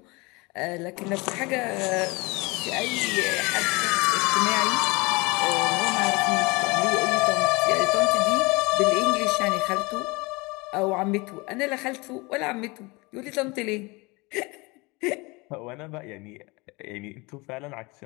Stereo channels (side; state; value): right; quieter; 25.6 dB